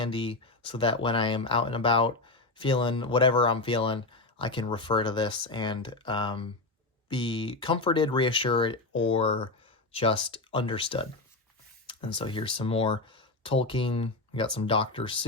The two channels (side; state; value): right; quieter; 3.2 dB